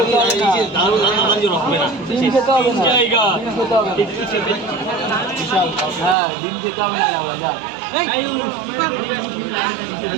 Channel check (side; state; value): left; drops out; at 6.2 s